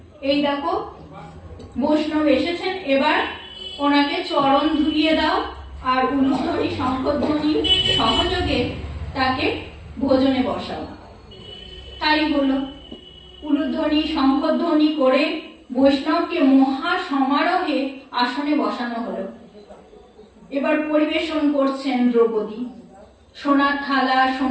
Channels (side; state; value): both; identical; correlation 1.00